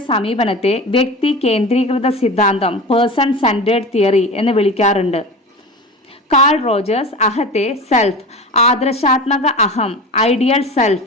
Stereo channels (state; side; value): normal; both; correlation 0.31